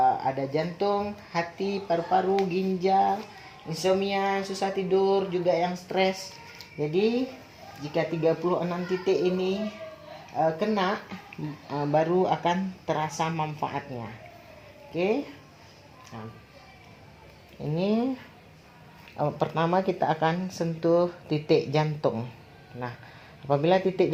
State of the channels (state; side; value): identical; both; correlation 1.00